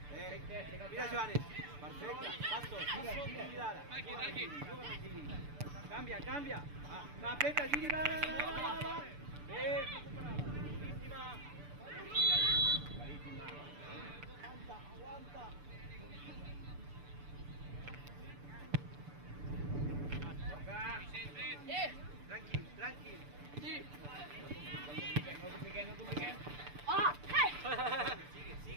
Mira, Joanes. Perfecte. Passo. Girada. Cambia. Va, apreta, Giri, va. Ve. Clarísima. Aguanta. Toca. Tranquil. Sí. No compliquen.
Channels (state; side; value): late; left; 6.8 ms